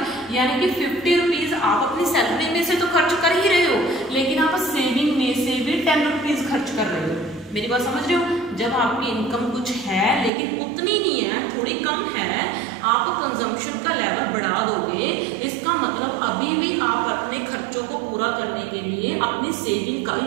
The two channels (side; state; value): left; drops out; at 10.3 s